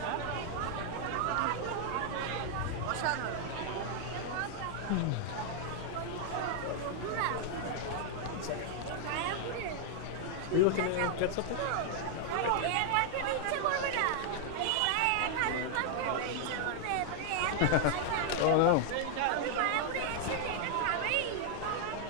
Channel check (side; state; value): both; different; correlation 0.00